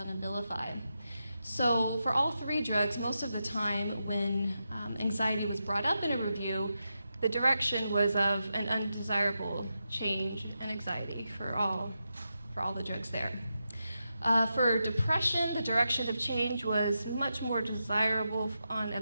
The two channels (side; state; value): both; inverted; correlation -0.87